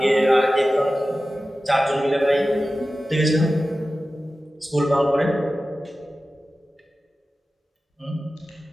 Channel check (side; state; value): both; normal; correlation 0.95